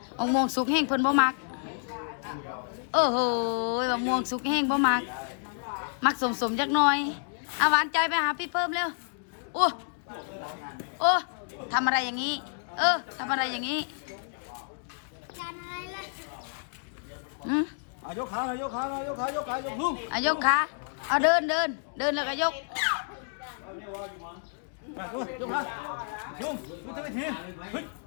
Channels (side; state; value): right; silent; digital silence